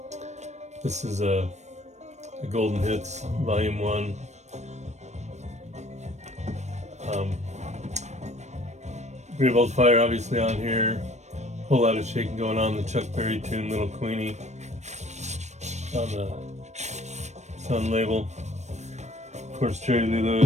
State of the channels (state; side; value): late; left; 0.33 ms